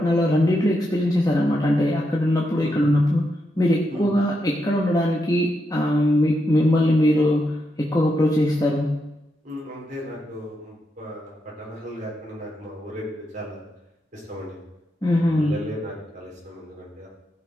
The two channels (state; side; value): normal; both; correlation 0.83